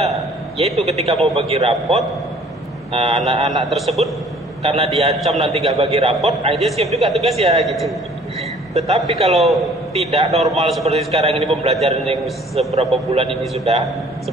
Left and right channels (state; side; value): normal; both; correlation 0.54